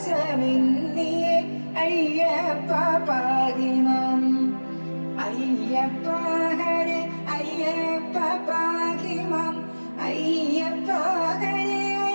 അയ്യപ്പ പാഹിമാം അയ്യപ്പ ഹരേ അയ്യപ്പ പാഹിമാം അയ്യപ്പ ഹരേ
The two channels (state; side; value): inverted; both; correlation -1.00